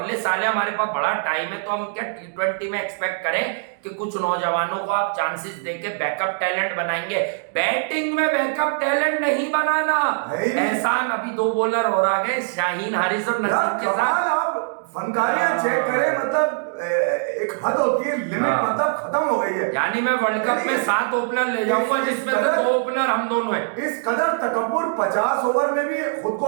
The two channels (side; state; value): left; silent; digital silence